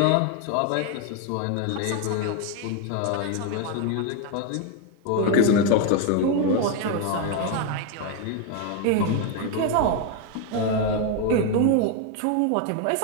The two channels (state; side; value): different; both; correlation 0.01